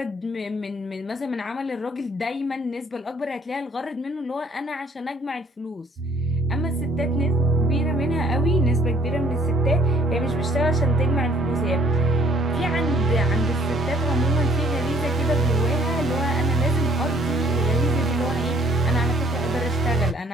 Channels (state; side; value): normal; both; correlation 0.61